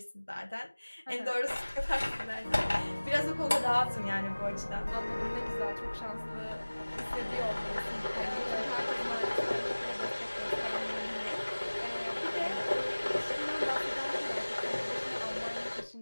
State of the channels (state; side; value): inverted; both; correlation -1.00